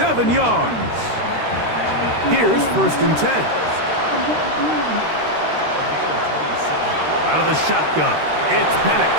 yards. Here's 1st and 10. Out of the shotgun, it's Penix.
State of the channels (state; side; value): late; left; 13 ms